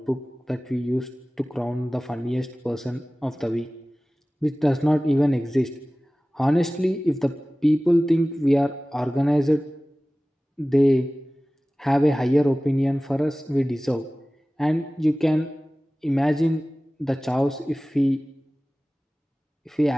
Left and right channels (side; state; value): both; normal; correlation 0.97